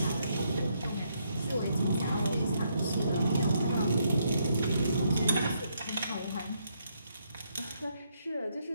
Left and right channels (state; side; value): inverted; both; correlation -0.76